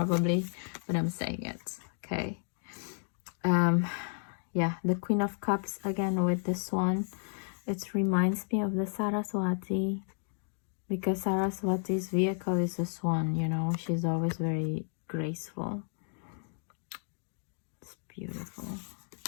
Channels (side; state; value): right; silent; 56 dB below the other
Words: but I'm saying it. Okay. Yeah, the Queen of Cups again with the swan. It reminds me of the Saraswati, because Saraswati's vehicle is a swan, you know. She's always very graceful. It's beautiful.